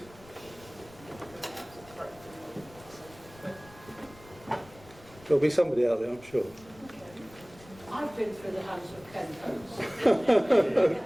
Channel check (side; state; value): left; noise; rumble, 22 dB below the sound